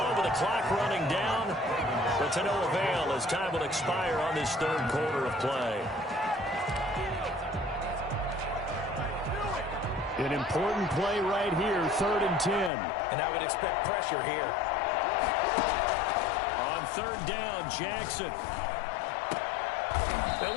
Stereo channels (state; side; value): drops out; right; at 12.7 s